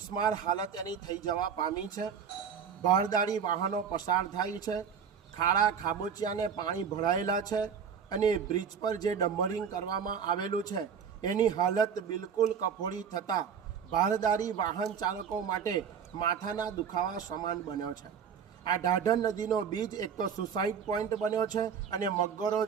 હાલત એની થઈ જવા પામી છે। ભારદારી વાહનો પસાર થાય છે, ખાડા ખાબોચિયાને પાણી ભરાયેલા છે અને બ્રિજ પર જે ડમ્બરિંગ કરવામાં આવેલું છે એની હાલત બિલકુલ કફોડી થતાં ભારદારી વાહન ચાલકો માટે માથાના દુખાવા સમાન બન્યો છે। આ ઢાઢર નદીનો બીજ એક તો સુસાઇડ પોઈન્ટ બન્યો છે અને મગરો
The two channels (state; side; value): quieter; left; 7.1 dB